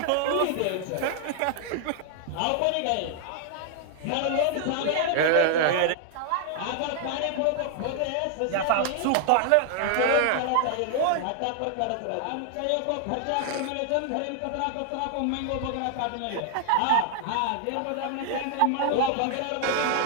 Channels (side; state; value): both; different; correlation 0.00